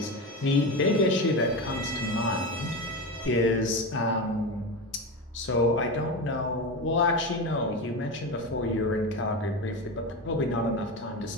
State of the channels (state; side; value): normal; both; correlation 0.21